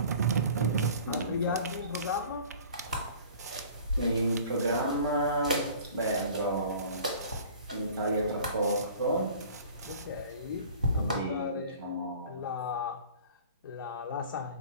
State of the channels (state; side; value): inverted; both; correlation -0.46